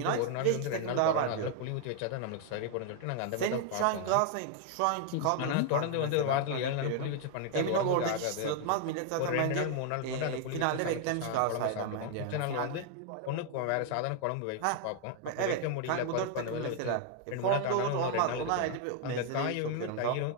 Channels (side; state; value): both; different; correlation 0.00